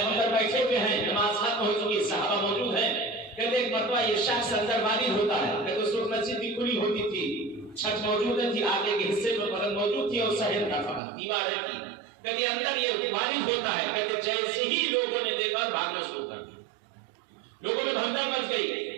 بیٹھے ہوئے ہیں، نماز ختم ہو چکی، صحابہ موجود ہیں۔ کہتے ایک مرتبہ یہ شخص اندر وارد ہوتا ہے، کہتے اس وقت مسجد بھی کھلی ہوتی تھی، چھت موجود تھی، آگے کے حصے میں بدن موجود تھی اور صحن کا فقط دیواریں تھی۔ کہتے اندر یہ وارد ہوتا ہے، کہتے جیسے ہی لوگوں نے دیکھا بھاگنا شروع کر دیا، لوگوں میں بھگدڑ مچ گئی۔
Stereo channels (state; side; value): drops out; left; at 11.0 s